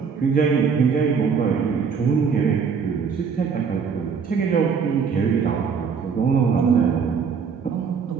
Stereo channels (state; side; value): quieter; left; 6.1 dB